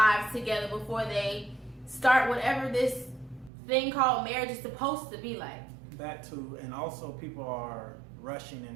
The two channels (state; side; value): drops out; left; at 3.5 s